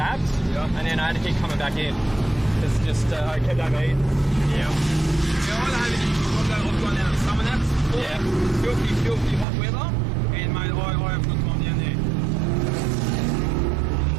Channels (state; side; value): drops out; left; at 9.5 s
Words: and then I had to keep coming back in. It's just I kept overheating. Yeah. I've gone down to summer naps. Yeah. Filthy hot weather, and mate, I have good time down there.